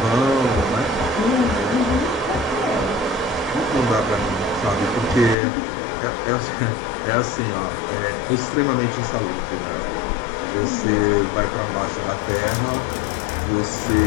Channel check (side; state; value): right; drops out; at 5.4 s